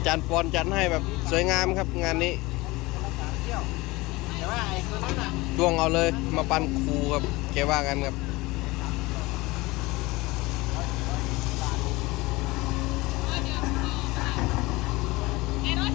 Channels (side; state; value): right; quieter; 21.6 dB